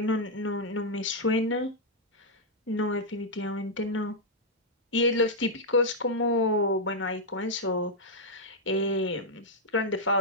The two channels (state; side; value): normal; both; correlation -0.05